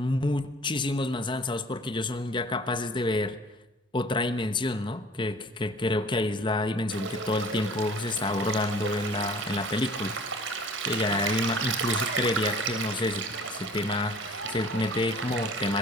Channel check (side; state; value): both; normal; correlation 0.48